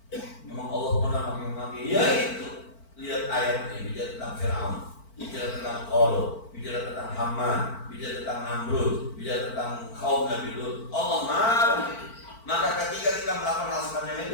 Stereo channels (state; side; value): late; right; 4.5 ms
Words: Memang Allah pernah maki-maki, ya itu. Lihat ayat ini, bicara tentang Fir'aun, bicara tentang Qarun, bicara tentang Haman, bicara tentang Namrud, bicara tentang kaum Nabi Lut. Allah marah. Maka ketika kita melakukan hal semacam